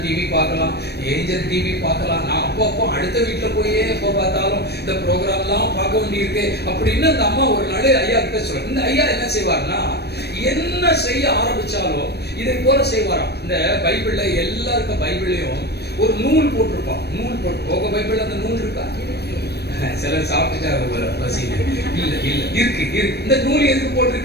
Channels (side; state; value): right; late; 0.47 ms